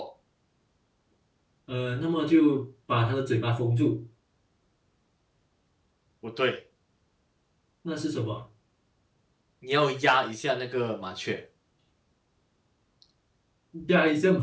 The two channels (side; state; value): both; identical; correlation 1.00